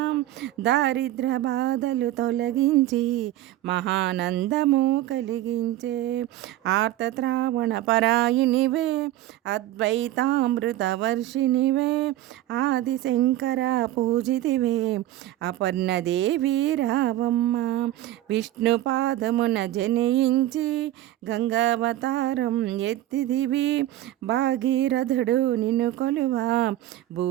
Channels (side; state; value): left; quieter; 14.3 dB